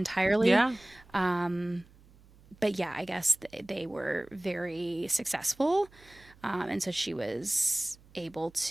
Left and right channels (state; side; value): noise; right; hum, 26 dB below the sound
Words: yeah. Um, but yeah, I guess they were very successful. And so she was able